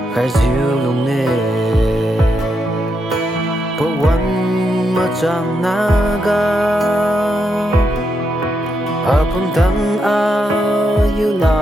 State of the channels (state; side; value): normal; both; correlation 0.82